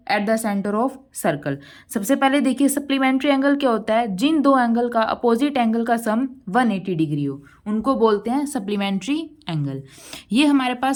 at the centre of circle. सबसे पहले देखिए सप्लीमेंट्री एंगल क्या होता है। जिन दो एंगल का अपोजिट एंगल का सम 180 डिग्री हो उनको बोलते हैं सप्लीमेंट्री एंगल। ये हमारे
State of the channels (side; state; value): both; identical; correlation 1.00